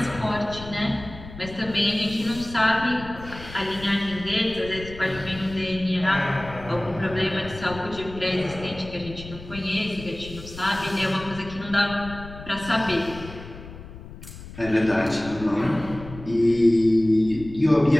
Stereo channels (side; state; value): left; noise; rumble, 14 dB below the sound